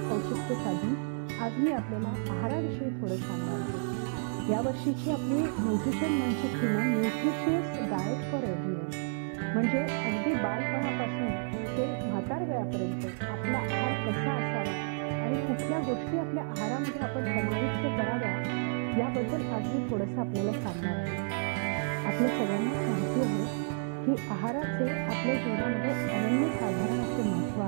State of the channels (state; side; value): silent; left; digital silence